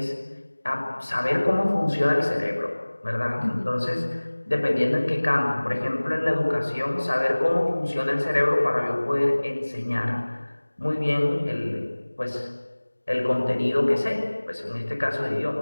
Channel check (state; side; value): inverted; both; correlation -1.00